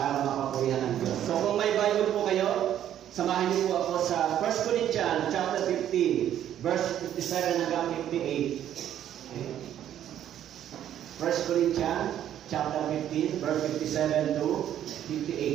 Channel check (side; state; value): left; quieter; 10.9 dB